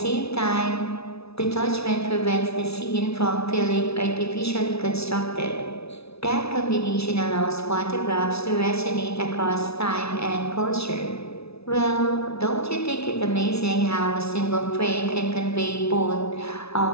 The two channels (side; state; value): right; late; 0.78 ms